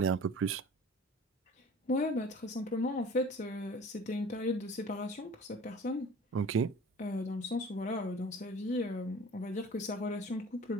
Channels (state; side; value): normal; both; correlation 0.43